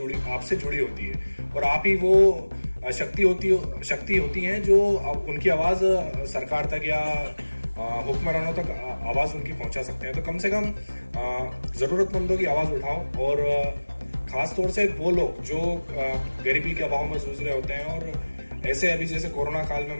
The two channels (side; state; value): both; inverted; correlation -1.00